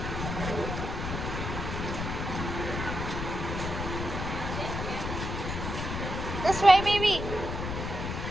This way, baby.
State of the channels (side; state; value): left; noise; rumble, 4 dB below the sound